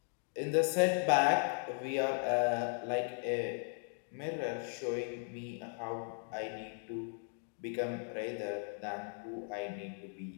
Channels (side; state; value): right; silent; 53 dB below the other